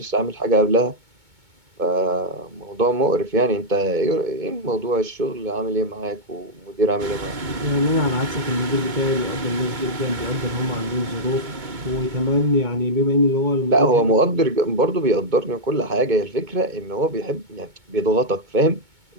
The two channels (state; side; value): late; left; 2.2 ms